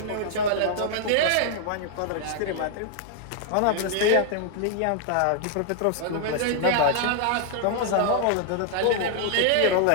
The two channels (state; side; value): different; both; correlation 0.00